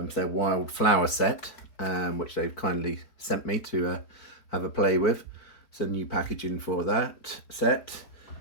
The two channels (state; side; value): late; right; 4.5 ms